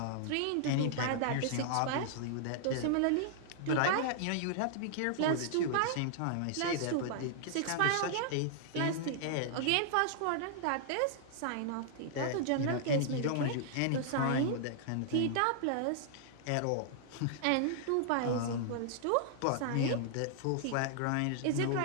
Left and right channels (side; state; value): both; different; correlation -0.01